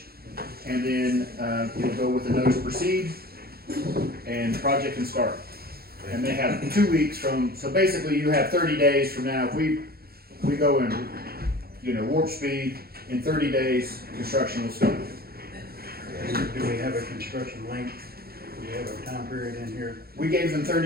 And then, you'll go with the notice to proceed, and the project can start. And they have 2 weeks so basically you have 30 days from now, if we go in, warp speed, in 30 days, construction will start. Do we have a construction length? Do we have a time period in here? We gave them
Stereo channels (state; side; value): late; left; 0.45 ms